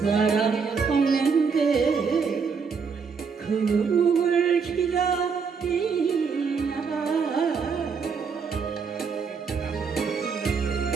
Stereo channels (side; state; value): left; quieter; 5.6 dB